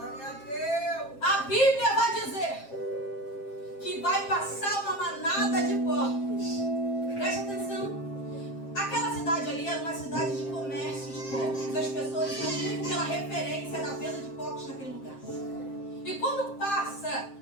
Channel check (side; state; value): right; late; 7.5 ms